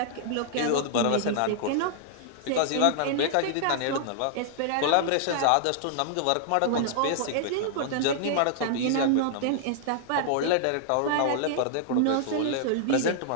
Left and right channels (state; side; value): different; both; correlation -0.01